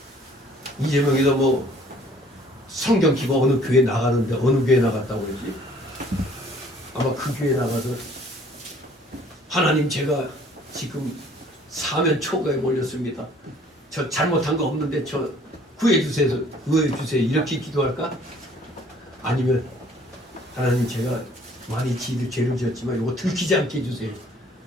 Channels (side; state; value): both; normal; correlation 0.57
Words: 이재명이도 뭐 성경 키고 어느 교회 나가는데 어느 교회 나갔다고 그러지? 아마 그 교회 나가서 하나님 제가 지금 사면 초가에 몰렸습니다. 저 잘못한 거 없는데 저 구해주세요. 구해주세요. 이렇게 기도할까? 아니면 하나님 제가 많이 죄를 지었지만 이거 들키지 않게 해주세요.